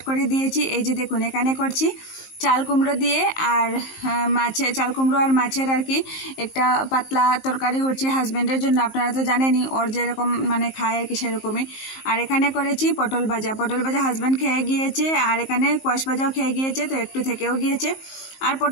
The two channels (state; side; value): late; right; 19 ms